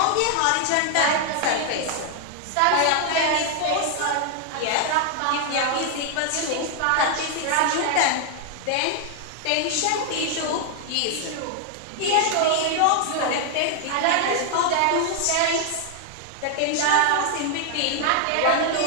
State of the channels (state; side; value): different; both; correlation 0.00